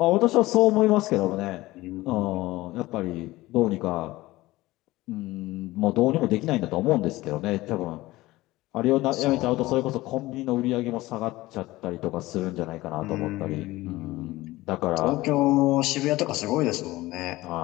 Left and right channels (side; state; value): right; quieter; 18.5 dB